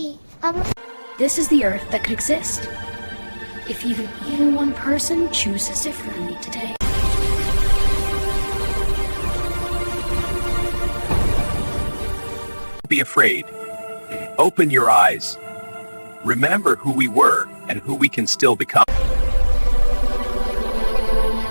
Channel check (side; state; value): both; inverted; correlation -1.00